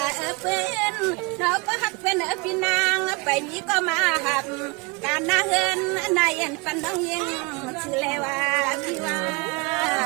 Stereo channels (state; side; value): quieter; left; 27.8 dB